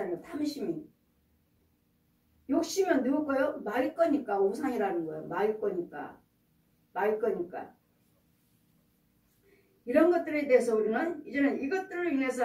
탐심이. 욕심은 누구 거요? 마의 거니까 우상이라는 거예요. 마의 거니까. 이런 것들에 대해서 우리는 이제는 이것들을 인해서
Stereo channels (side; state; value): both; identical; correlation 1.00